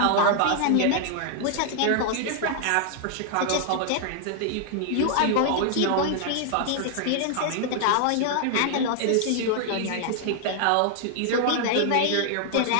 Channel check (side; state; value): both; different; correlation 0.00